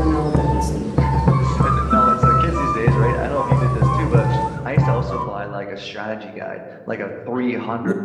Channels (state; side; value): identical; both; correlation 1.00